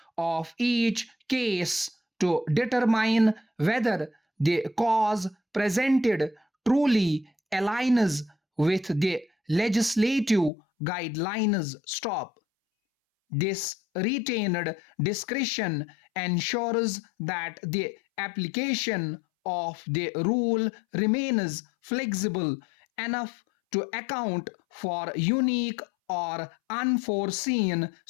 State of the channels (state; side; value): drops out; right; at 10.5 s